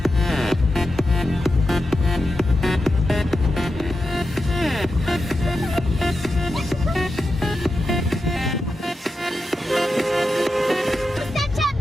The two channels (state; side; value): normal; both; correlation 0.89